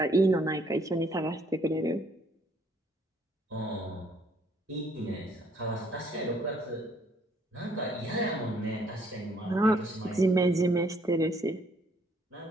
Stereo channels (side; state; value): both; normal; correlation 0.65